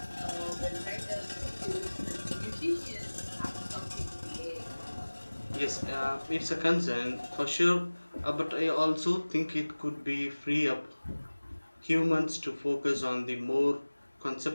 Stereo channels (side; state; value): both; inverted; correlation -1.00